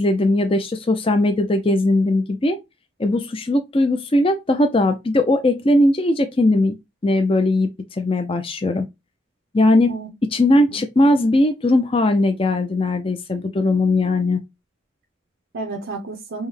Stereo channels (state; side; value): normal; both; correlation 0.79